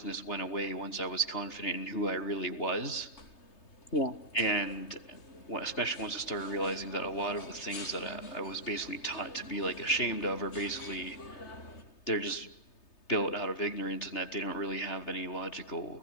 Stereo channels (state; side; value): late; right; 3.3 ms